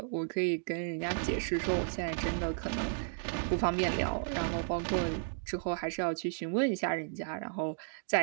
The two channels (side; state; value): left; silent; digital silence